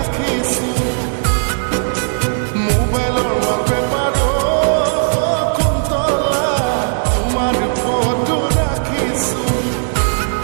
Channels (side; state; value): left; silent; digital silence